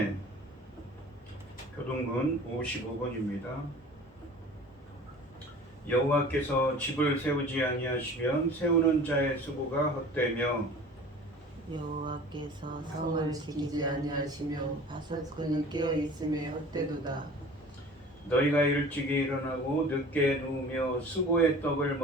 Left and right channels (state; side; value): normal; both; correlation 0.43